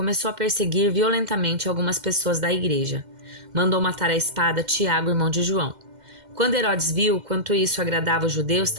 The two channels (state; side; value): late; left; 2.1 ms